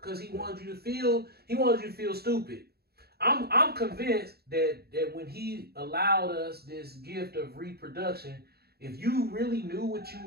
because he wanted you to feel stupid. I'm convinced that when he allowed us this gift of reproduction, if you really knew what you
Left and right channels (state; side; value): late; left; 0.46 ms